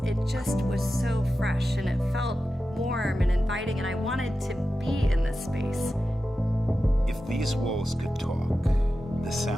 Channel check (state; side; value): normal; both; correlation 0.92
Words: it just was so fresh and it felt warm and inviting, and I wanted to be in this space. If these walls could talk, the